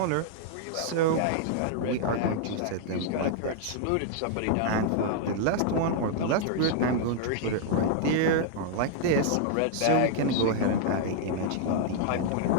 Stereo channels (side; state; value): both; different; correlation -0.01